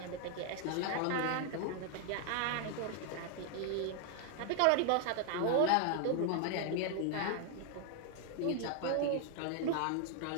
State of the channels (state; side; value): different; both; correlation 0.00